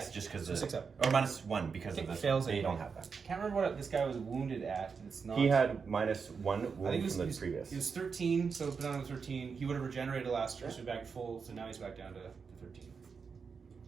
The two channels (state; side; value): quieter; left; 5.6 dB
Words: just because So of 6 up. Or -1 because Okay, of the fails they anyway. don't have that. I can't remember what this guy was wounded at. It's not. He had -1 I think wound from the previous. He was 13, so put on 13. He would have regenerated last turn, so he's back full. So now he's back down to 13.